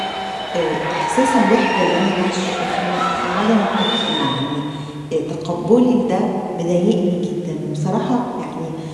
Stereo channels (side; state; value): both; identical; correlation 1.00